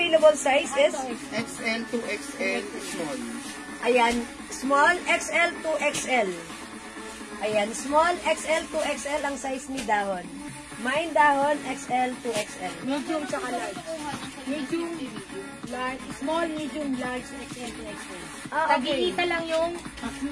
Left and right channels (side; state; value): both; identical; correlation 1.00